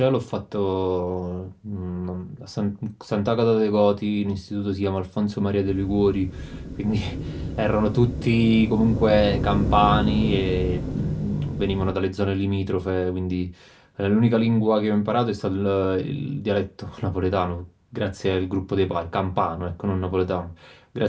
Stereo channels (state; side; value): identical; both; correlation 1.00